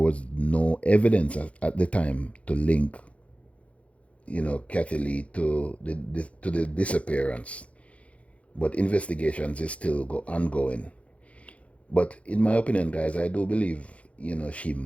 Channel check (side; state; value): right; late; 0.064 ms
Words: no evidence at the time to link, you know, Kathy Lee to the disappearance. But investigations is still ongoing. But in my opinion, guys, I do believe, you know, she